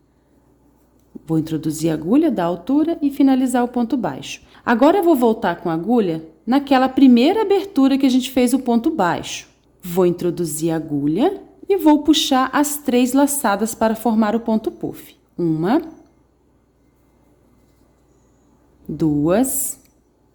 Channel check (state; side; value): identical; both; correlation 1.00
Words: Vou introduzir a agulha, dar altura e finalizar o ponto baixo. Agora, eu vou voltar com a agulha naquela primeira abertura que a gente fez o ponto baixo. Vou introduzir a agulha e vou puxar as 3 laçadas para formar o ponto puff. 1, 2,